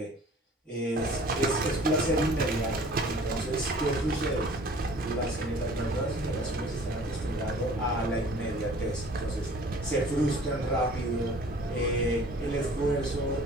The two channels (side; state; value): both; normal; correlation 0.49